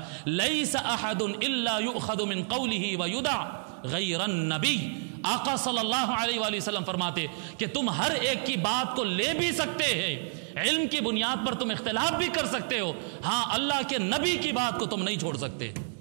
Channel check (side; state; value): left; silent; digital silence